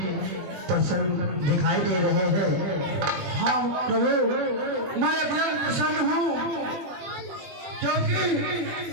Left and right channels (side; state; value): left; late; 21 ms